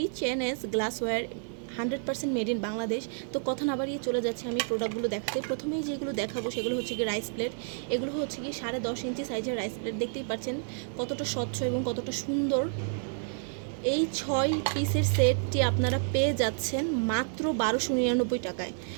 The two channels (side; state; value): left; silent; digital silence